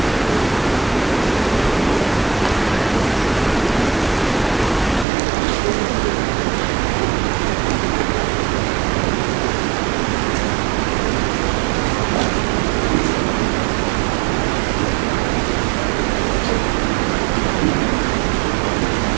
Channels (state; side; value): drops out; left; at 5.1 s